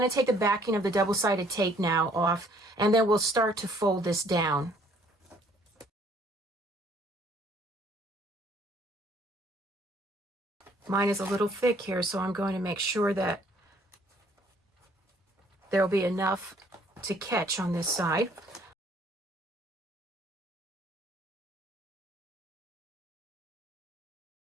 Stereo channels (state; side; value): normal; both; correlation 0.61